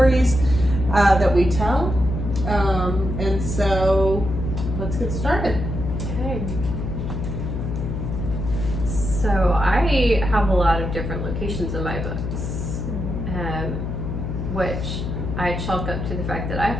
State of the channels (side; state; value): left; noise; hum, 4 dB below the sound